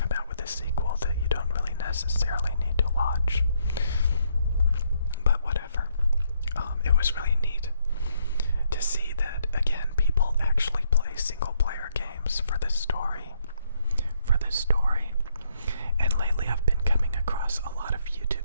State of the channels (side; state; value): both; inverted; correlation -0.72